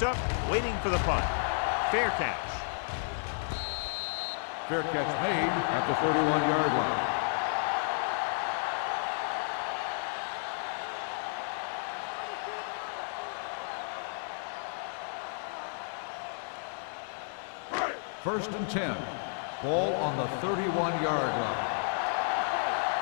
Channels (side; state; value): right; silent; digital silence